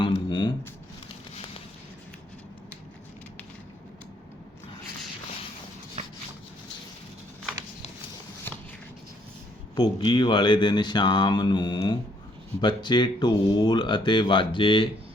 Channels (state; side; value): normal; both; correlation 0.67